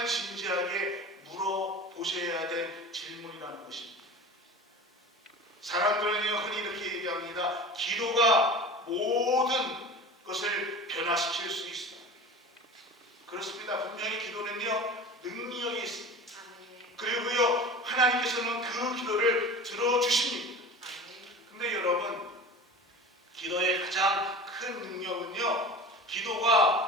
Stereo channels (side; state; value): both; normal; correlation 0.36